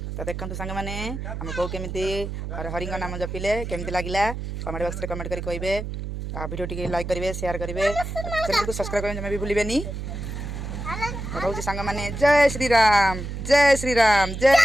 तो देखो सांग मैंने आम को केमी हरि नाम जपिले केमती लगे कमेंट बॉक्स में कमेंट कर कहे वीडियो टी लाइक करेंगे शेयर करेंगे चैनल को सब्सक्राइब करने भी भूलें कहूँ सांग मैंने जय श्रीराम जय श्रीराम जय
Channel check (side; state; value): right; noise; hum, 6 dB below the sound